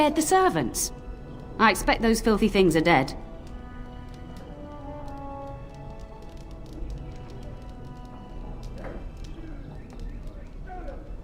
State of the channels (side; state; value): both; identical; correlation 1.00